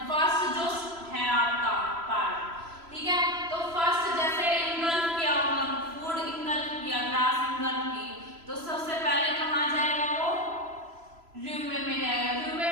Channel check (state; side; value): late; left; 3.0 ms